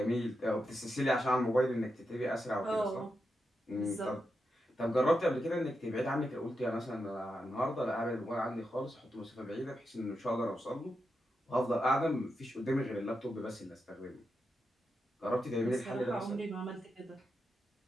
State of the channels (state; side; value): normal; both; correlation 0.86